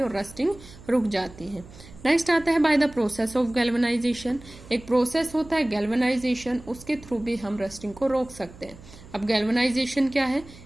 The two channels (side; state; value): right; noise; hum, 20 dB below the sound